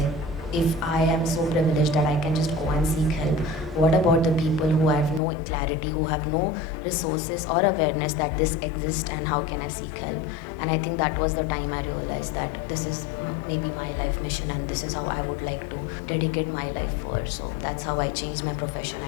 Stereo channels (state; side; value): drops out; right; at 5.2 s